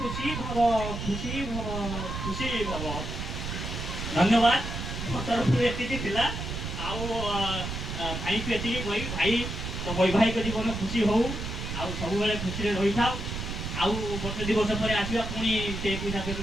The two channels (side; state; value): right; noise; rumble, 5 dB below the sound